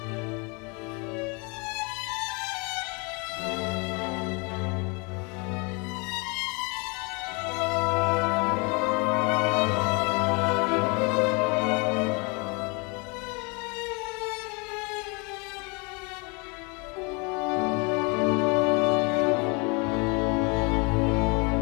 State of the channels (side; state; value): right; quieter; 30.9 dB